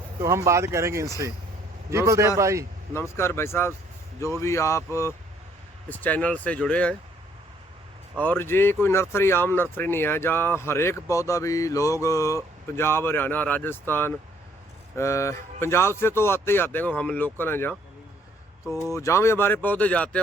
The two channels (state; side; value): normal; both; correlation 0.64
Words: तो हम बात करेंगे इनसे। जी बलदेव भाई। नमस्कार भाई साहब, जो भी आप इस चैनल से जुड़े हैं। और ये कोई नर्सरी आम नर्सरी नहीं है, जहाँ हर एक पौधा भी लोग पंजाब, हरियाणा, राजस्थान, पंजाब से तो आते ही आते हैं, हम लोकल हैं जहाँ। तो जहाँ भी हमारे पौधे जाते